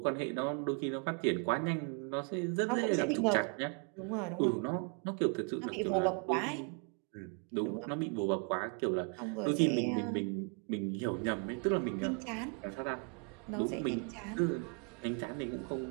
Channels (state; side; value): quieter; left; 38.6 dB